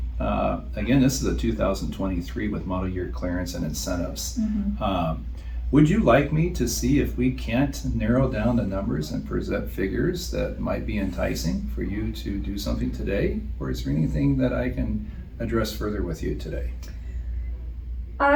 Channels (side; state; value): both; identical; correlation 1.00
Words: again, this is a 2023 with model year clearance and incentives. Would you like me to see if we can't narrow down the numbers and present figures that might be enticing for you to do something today? Or is there anything that I can address further with you today?